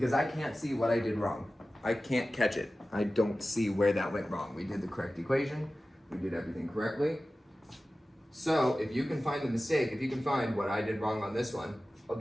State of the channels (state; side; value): normal; both; correlation 0.95